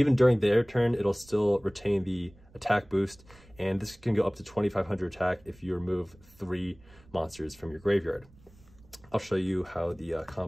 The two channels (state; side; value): noise; right; rumble, 26 dB below the sound